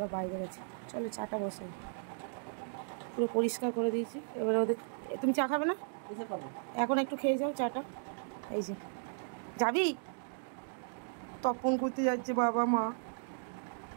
বাইরে গেছে। চলো চাটা বসাই, পুরো পরিষ্কার করে দিয়েছি। এবারে ওদের, তুমি চা খাবে না? এখন একটু খেয়ে যাও চাটা। এই যে যাবি, তর্পণ করতে যাচ্ছে বাবা মা।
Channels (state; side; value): silent; left; digital silence